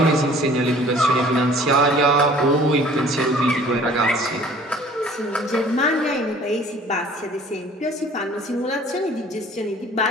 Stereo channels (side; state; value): both; normal; correlation 0.51